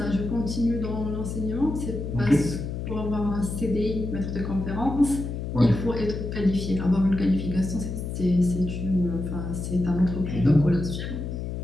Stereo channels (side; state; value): left; noise; hum, 5 dB below the sound